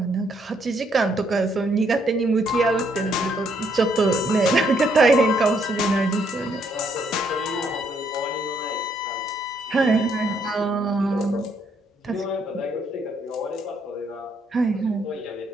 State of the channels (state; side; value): normal; both; correlation 0.71